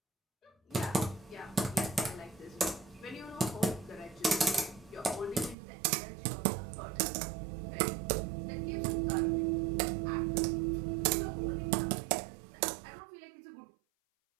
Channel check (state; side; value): drops out; left; at 5.6 s